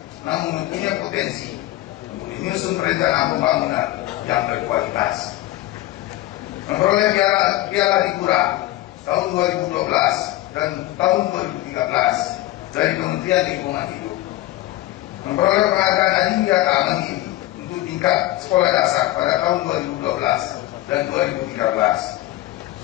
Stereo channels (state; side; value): quieter; right; 16.2 dB